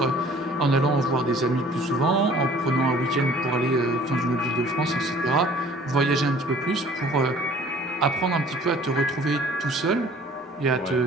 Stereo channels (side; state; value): both; normal; correlation 0.52